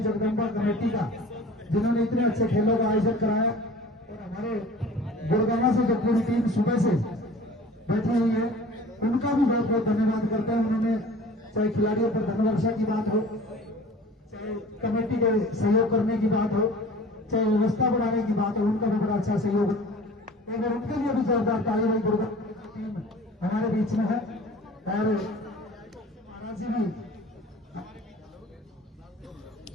जगदम्बा कमेटी का, जिन्होंने इतने अच्छे खेलों का आयोजन कराया। और हमारे गुड़गांव से जो पूरी टीम सुबह से बैठी हुई है उनका भी बहुत बहुत धन्यवाद करते हैं। उन्होंने चाहे खिलाड़ियों पर धनवर्षा की बात हो, चाहे कमेटी के सहयोग करने की बात हो, चाहे व्यवस्था बढ़ाने की बात हो, उनका भी बड़ा अच्छा सहयोग है। अगर उनके लिए भी जोरदार ताली भाई गुड़गांव टीम हमारे बीच में है। और महाराज जी भी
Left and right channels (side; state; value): both; normal; correlation 0.44